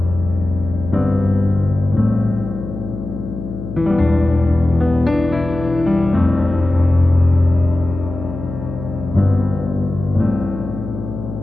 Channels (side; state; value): left; noise; hum, 9 dB below the sound